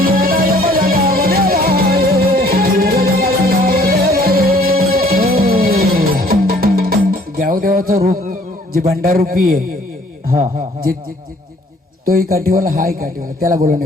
गावदेवाचं रूप जे भंडारूपी आहे, जे तोही काठीवाला हाय काठीवाला, त्याला बोलवणे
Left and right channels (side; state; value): both; normal; correlation 0.58